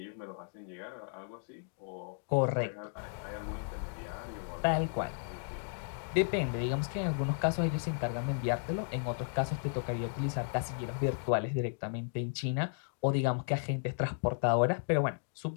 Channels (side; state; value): right; silent; digital silence